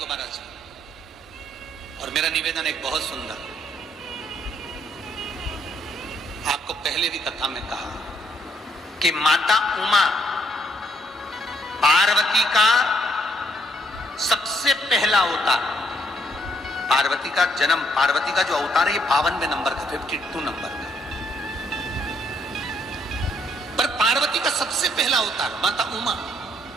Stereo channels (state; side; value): normal; both; correlation 0.70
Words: 12 से। और मेरा निवेदन एक बहुत सुंदर, आपको पहले भी कथा में कहा कि माता उमा पार्वती का सबसे पहला अवतार, पार्वती का जन्म, पार्वती का जो अवतार है ये 52वें नंबर का, 52 नंबर का, पर पार्वती का सबसे पहला अवतार माता उमा,